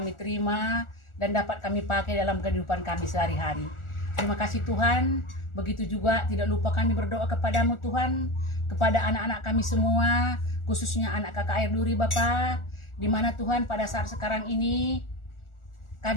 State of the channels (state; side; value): late; right; 1.4 ms